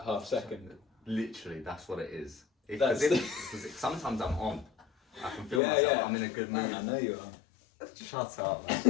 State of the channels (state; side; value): drops out; right; at 5.6 s